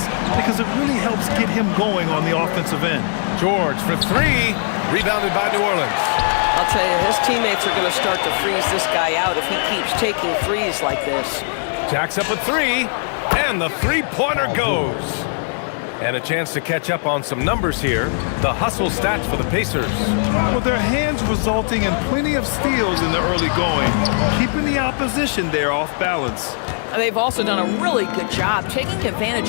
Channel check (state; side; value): silent; right; digital silence